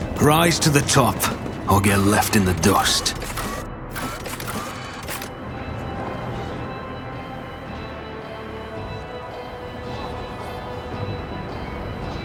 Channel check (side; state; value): both; identical; correlation 1.00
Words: Rise to the top, or get left in the dust.